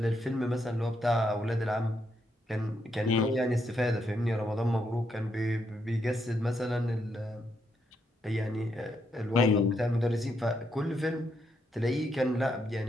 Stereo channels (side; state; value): both; normal; correlation 0.79